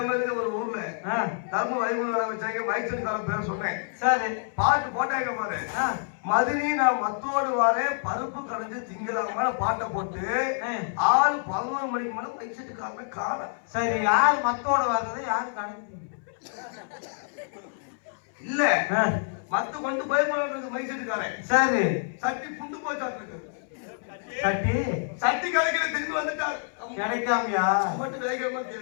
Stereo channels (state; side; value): silent; right; 60 dB below the other